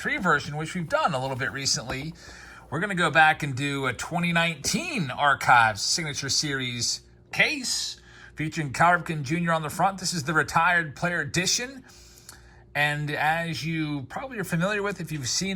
version, which we've done a little bit recently, we're going to go back and do a 2019 Archive Signature Series case featuring Cal Ripken Jr. on the front. This is the Retired Player Edition. And as you probably are familiar with, if you've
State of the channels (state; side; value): identical; both; correlation 1.00